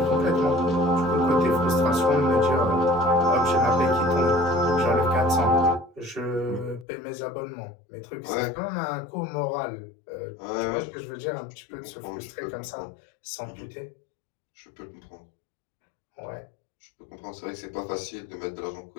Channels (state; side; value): drops out; right; at 6.9 s